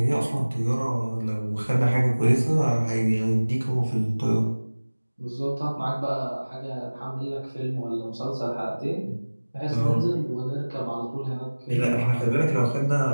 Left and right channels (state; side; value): inverted; both; correlation -1.00